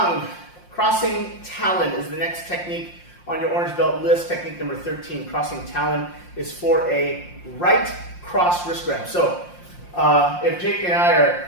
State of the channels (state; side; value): late; right; 5.7 ms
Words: Crossing Talon is the next technique on your orange belt list. Technique number 13, crossing Talon, is for a right cross wrist grab. So if Jake and I are